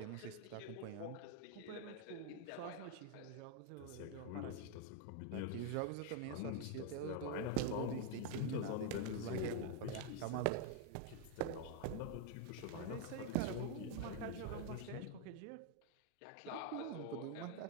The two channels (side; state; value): both; different; correlation 0.01